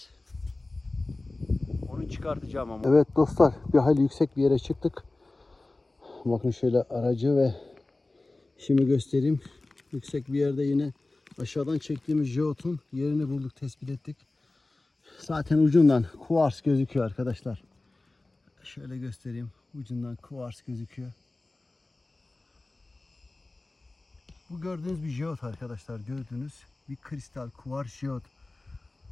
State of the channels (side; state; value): right; quieter; 3.0 dB